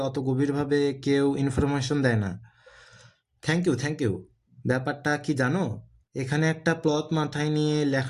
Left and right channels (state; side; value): identical; both; correlation 1.00